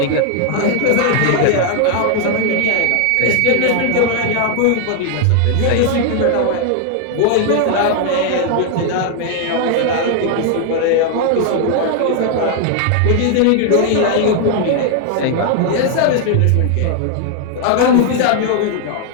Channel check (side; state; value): both; different; correlation 0.00